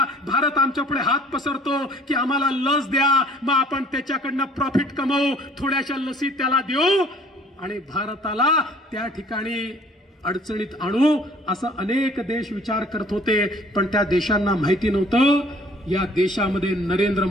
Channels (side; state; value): both; normal; correlation 0.55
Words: भारत आमच्यापुढे हात पसरतो की आम्हाला लस द्या, मग आपण त्याच्याकडनं प्रॉफिट कमवू, थोड्याशा लसी त्याला देऊ आणि भारताला त्या ठिकाणी अडचणीत आणू, असं अनेक देश विचार करत होते. पण त्या देशांना माहिती नव्हतं या देशामध्ये नरेंद्र